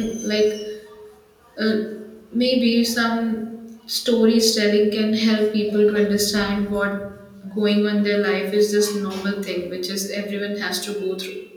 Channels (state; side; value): identical; both; correlation 1.00